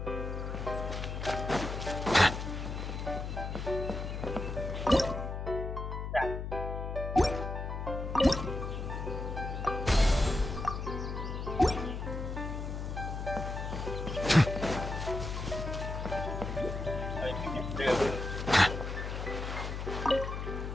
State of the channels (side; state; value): left; noise; hum, 4 dB below the sound